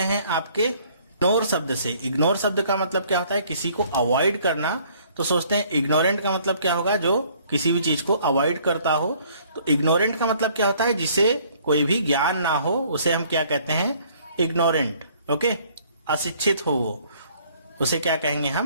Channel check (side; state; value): both; inverted; correlation -0.60